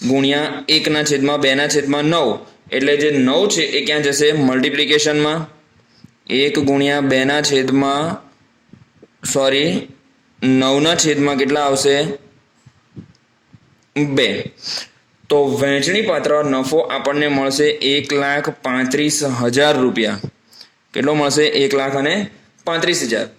1/2/9 એટલે જે 9 છે એ ક્યાં જશે? મલ્ટિપ્લિકેશનમાં. 1 ગુણ્યા 9/છેદમાં કેટલા આવશે? 2. તો વહેંચણી પાત્ર નફો આપણને મળશે 1,35,000 રૂપિયા. કેટલો મળશે? 1,35,000.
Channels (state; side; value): identical; both; correlation 1.00